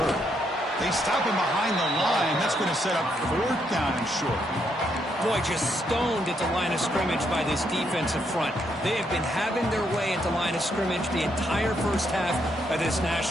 They stop him behind the line. That's going to set up 4th down and short. Boy, just stoned at the line of scrimmage by this defensive front. They have been having their way at the line of scrimmage the entire 1st half of this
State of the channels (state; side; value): normal; both; correlation 0.76